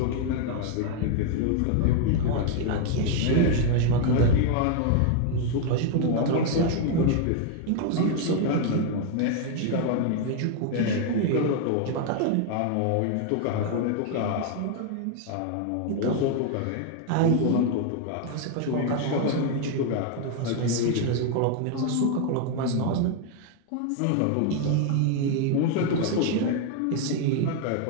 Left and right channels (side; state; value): both; different; correlation 0.00